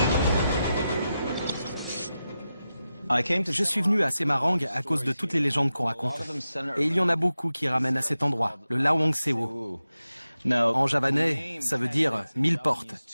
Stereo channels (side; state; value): both; inverted; correlation -0.91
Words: Je suis venu à Semarang à cause de toutes les légendes qu'on raconte. Et il y en a beaucoup qui ramènent à cet endroit, le Lawang Sewu. En javanais, ça veut dire 1000 portes.